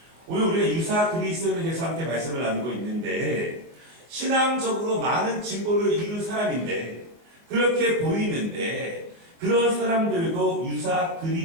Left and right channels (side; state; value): left; late; 23 ms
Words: 오늘 우리가 유사 그리스도인에 대해서 함께 말씀을 나누고 있는데 신앙적으로 많은 진보를 이룬 사람인데 그렇게 보이는데 그런 사람들도 유사